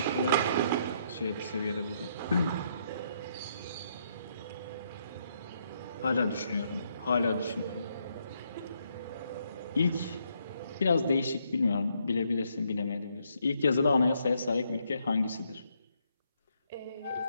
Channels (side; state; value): both; inverted; correlation -0.74